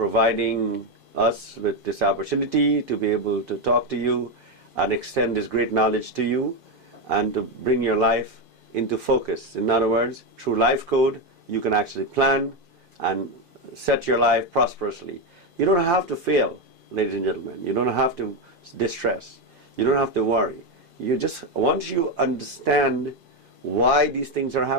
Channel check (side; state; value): left; late; 2.5 ms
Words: us with this opportunity to be able to talk to you and extend this great knowledge to you and to bring your life into focus. In other words, through Lifecode, you can actually plan and set your life prosperously. You don't have to fail, ladies and gentlemen. You don't have to distress. You don't have to worry. You just, once you understand why these things are